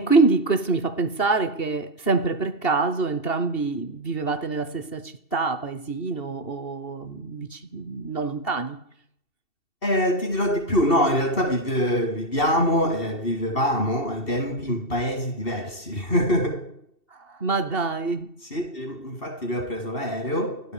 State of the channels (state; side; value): late; right; 2.7 ms